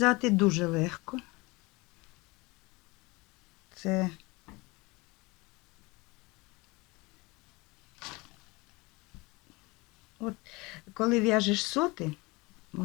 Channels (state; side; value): quieter; right; 24.3 dB